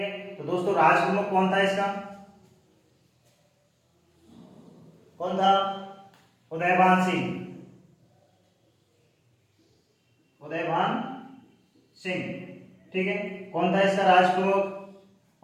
तो दोस्तों राज प्रमुख कौन था इसका? कौन था? उदयभान सिंह। उदयभान सिंह। ठीक है, कौन था इसका राज प्रमुख?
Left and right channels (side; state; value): both; identical; correlation 1.00